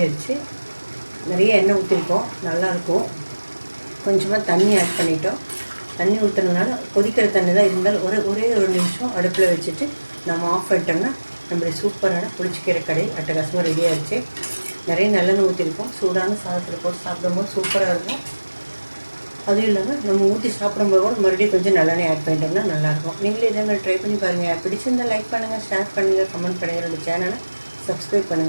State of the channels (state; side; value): inverted; both; correlation -1.00